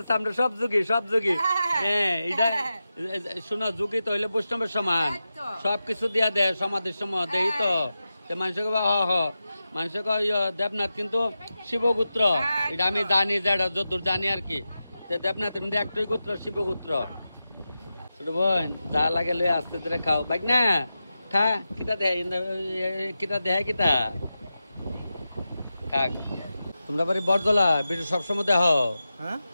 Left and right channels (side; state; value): both; inverted; correlation -0.92